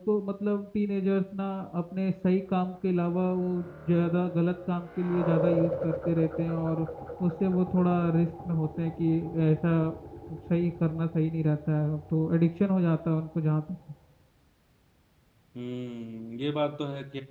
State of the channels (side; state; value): both; identical; correlation 1.00